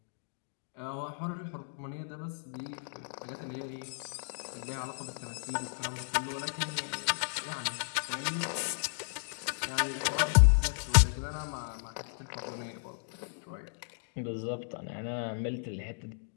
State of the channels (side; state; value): right; silent; digital silence